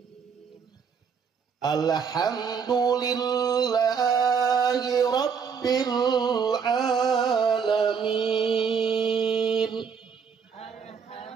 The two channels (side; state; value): left; quieter; 6.4 dB